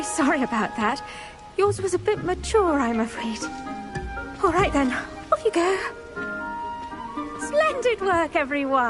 sorry about that. Yours was a bit mature, I'm afraid. All right then, off you go. Splendid work,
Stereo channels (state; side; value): identical; both; correlation 1.00